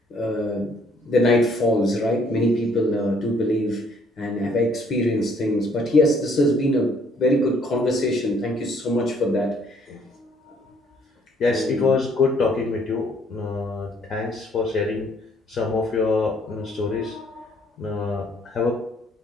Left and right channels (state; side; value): normal; both; correlation 0.64